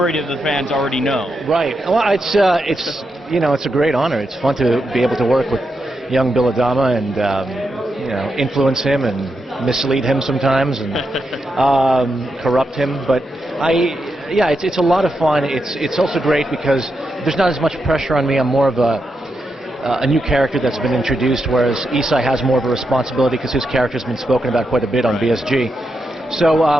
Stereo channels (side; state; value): both; normal; correlation 0.85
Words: of the fans already know? Right. Well, it's a great honor. It's fun to be able to work with young Bill Adama and influence him and mislead him sometimes and corrupt him. But it's a lot of fun. It's also great because there's not as much pressure on me. I'm more of a new character that's been introduced, whereas Isai has more of a responsibility because his character's been spoken about quite a bit on BSG. So